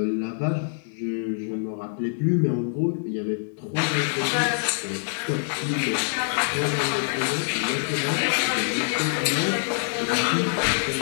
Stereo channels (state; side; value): silent; right; digital silence